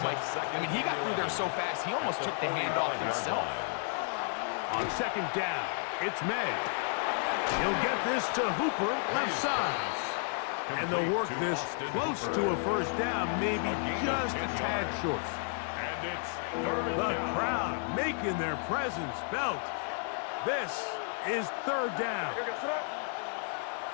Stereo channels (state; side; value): silent; right; 56 dB below the other